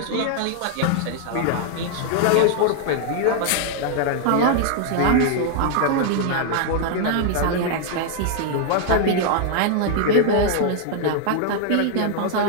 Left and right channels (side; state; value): both; different; correlation 0.00